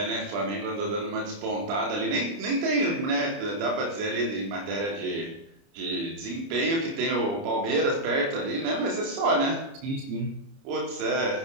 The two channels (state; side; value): late; left; 30 ms